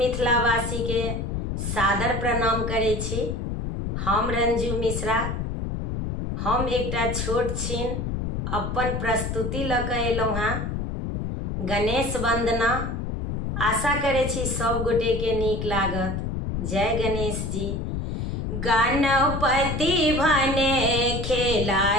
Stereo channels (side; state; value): left; noise; rumble, 3 dB below the sound